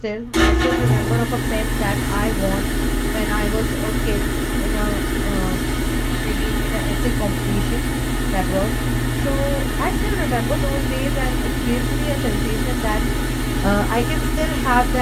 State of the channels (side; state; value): both; identical; correlation 1.00